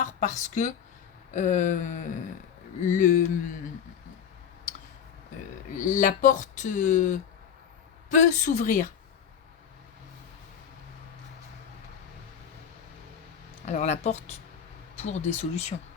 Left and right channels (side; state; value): right; quieter; 8.1 dB